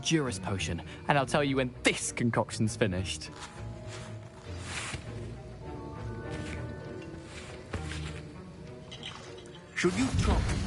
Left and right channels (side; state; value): both; identical; correlation 1.00